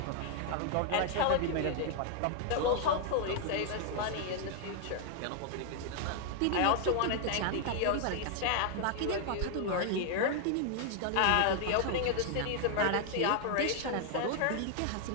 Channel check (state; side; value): different; both; correlation 0.00